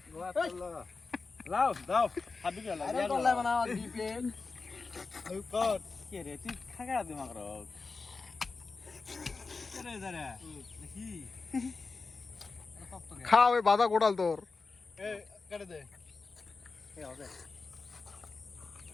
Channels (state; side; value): quieter; right; 4.2 dB